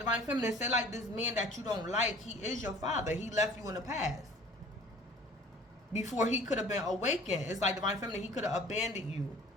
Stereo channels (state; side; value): normal; both; correlation 0.48